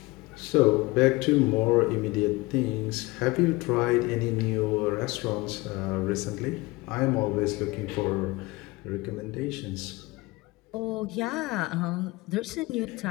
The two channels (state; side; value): quieter; right; 22.1 dB